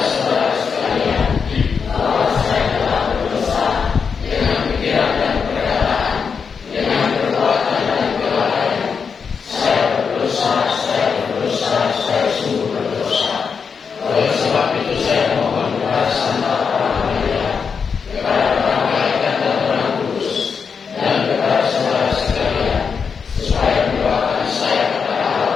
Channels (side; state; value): right; quieter; 6.0 dB